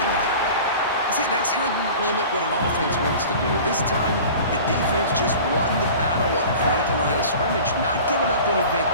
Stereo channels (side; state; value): both; inverted; correlation -0.40